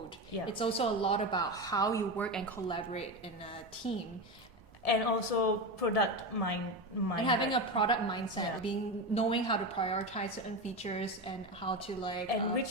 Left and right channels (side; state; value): both; normal; correlation 0.19